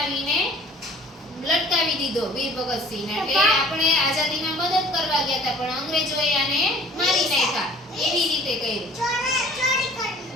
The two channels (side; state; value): both; normal; correlation 0.51